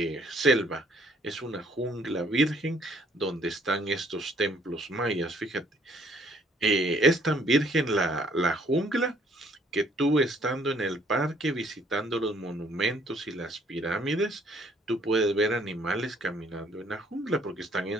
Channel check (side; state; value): both; normal; correlation 0.63